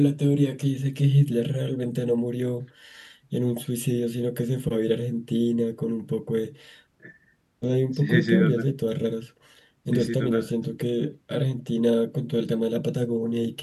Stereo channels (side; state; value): both; identical; correlation 1.00